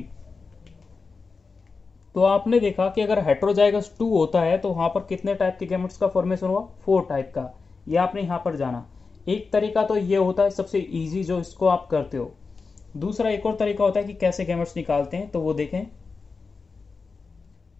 तो आपने देखा कि अगर हेट्रोजाइगस 2 होता है तो वहां पर कितने टाइप के गैमेट्स का फॉर्मेशन हुआ, 4 टाइप का। ये आपने यहां पर जाना। एक तरीका तो ये होता है सबसे इजी, जो इसको आप करते हो। दूसरा एक और तरीका होता है कि कैसे गैमेट्स निकालते हैं, तो वो देखें।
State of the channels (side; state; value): right; quieter; 4.5 dB